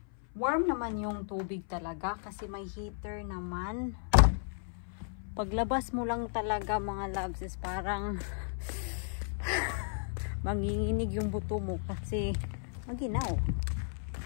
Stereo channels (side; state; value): right; silent; 55 dB below the other